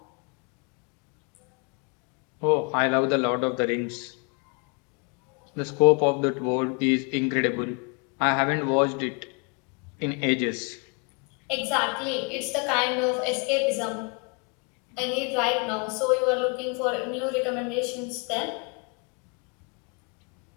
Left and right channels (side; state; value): right; quieter; 34.1 dB